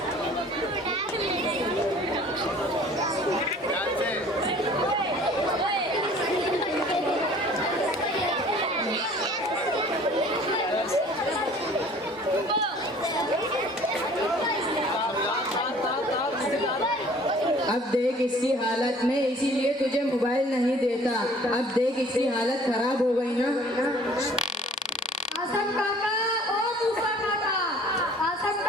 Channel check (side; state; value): both; normal; correlation 0.51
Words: अब देख इसकी हालत में, इसीलिए तुझे मोबाइल नहीं देता। अब देख इसकी हालत खराब हो गई ना। आसम काका, ओ मूसा काका। आसम